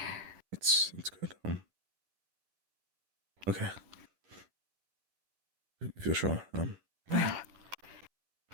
It's good. Okay. If you're sure.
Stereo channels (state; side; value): late; left; 11 ms